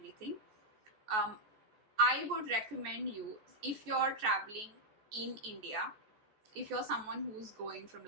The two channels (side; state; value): left; late; 14 ms